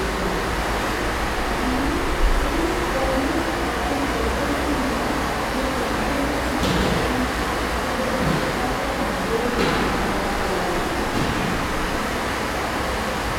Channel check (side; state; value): both; identical; correlation 1.00